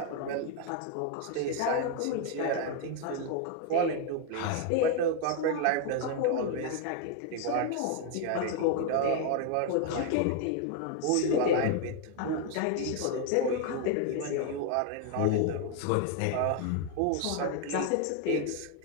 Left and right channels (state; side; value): different; both; correlation 0.00